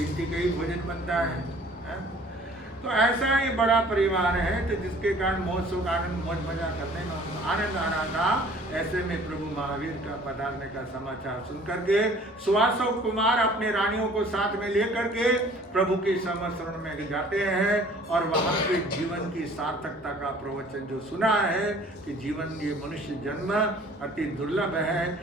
का ही भोजन बनता है। तो ऐसा ही बड़ा परिवार है तो जिसके कारण मौज सुख आनंद मौज मजा करने में आनंद आ रहा था। ऐसे में प्रभु महावीर का पधारने का समाचार सुन करके सुवासव कुमार अपने रानियों को साथ में लेकर के प्रभु के समस्रण में जाते हैं और वहां के जीवन की सार्थकता का प्रवचन जो सुना है कि जीवन ये मनुष्य जन्म अति दुर्लभ है,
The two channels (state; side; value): normal; both; correlation 0.52